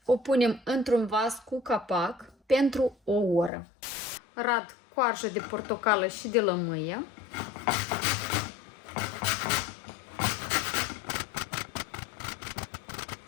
o punem într-un vas cu capac pentru o oră. Rad coarjă de portocală și de lămâie.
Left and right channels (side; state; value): right; drops out; at 3.5 s